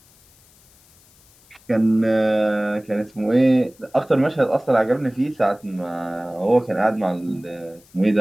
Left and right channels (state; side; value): noise; left; hiss, 29 dB below the sound